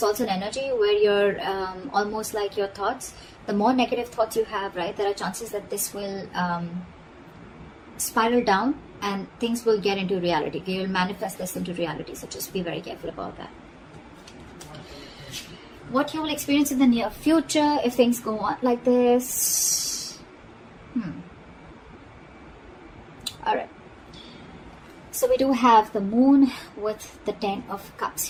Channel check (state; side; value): identical; both; correlation 1.00